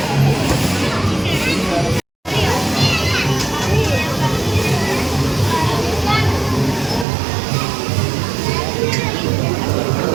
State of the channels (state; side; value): drops out; left; at 7.1 s